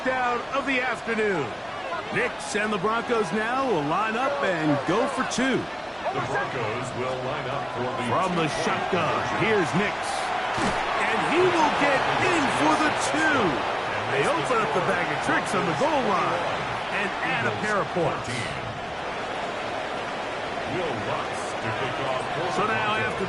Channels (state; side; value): identical; both; correlation 1.00